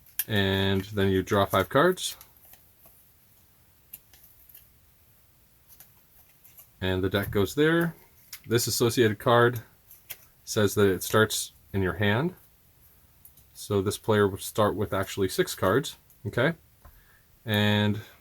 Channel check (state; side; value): identical; both; correlation 1.00